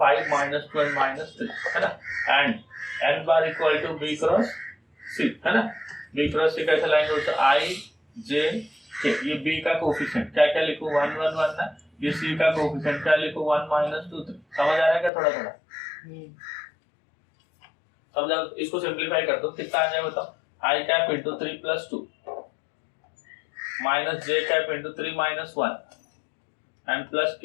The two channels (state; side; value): drops out; right; at 15.1 s